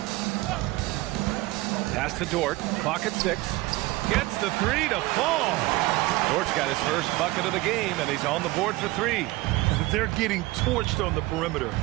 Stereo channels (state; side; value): quieter; left; 20.1 dB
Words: Pass to Dort. Clock at 6. Gets the three to fall. Dort's got his first bucket of the game, and he's on the board for 3. They're getting torched on the perimeter.